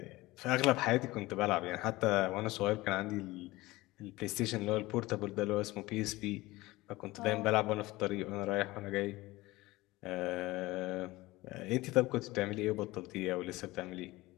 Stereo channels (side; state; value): right; quieter; 19.7 dB